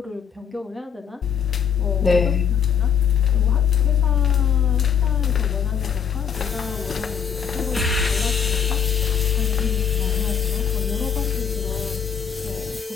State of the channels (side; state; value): right; quieter; 7.5 dB